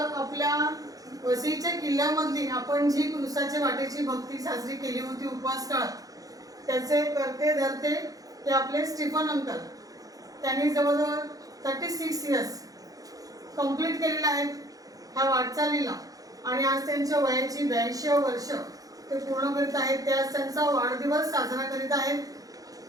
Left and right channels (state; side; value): late; left; 0.17 ms